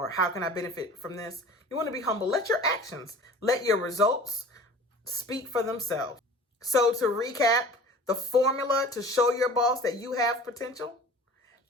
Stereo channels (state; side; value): normal; both; correlation 0.42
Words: how can I benefit from this. You want to be humble. Let your actions, let your results speak for themselves. So to recap, the formula to show your boss that you have potential.